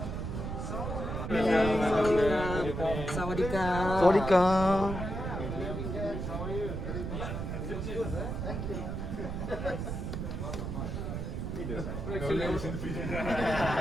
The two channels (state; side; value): noise; right; rumble, 4 dB below the sound